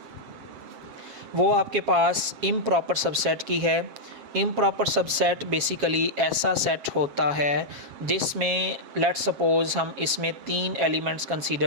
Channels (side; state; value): left; late; 7.3 ms